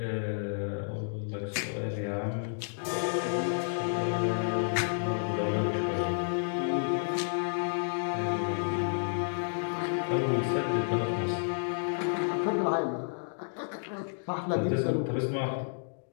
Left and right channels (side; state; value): right; silent; digital silence